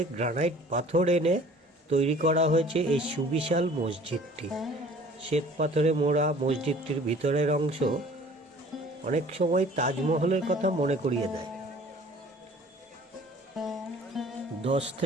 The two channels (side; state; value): both; normal; correlation 0.50